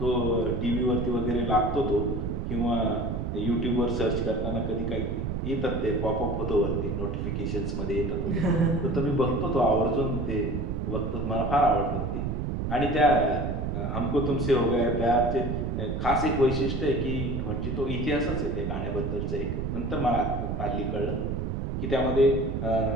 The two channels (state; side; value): noise; right; rumble, 2 dB below the sound